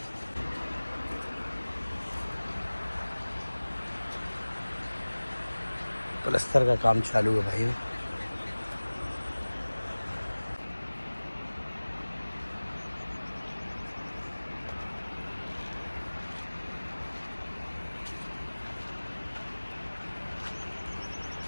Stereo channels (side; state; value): both; inverted; correlation -1.00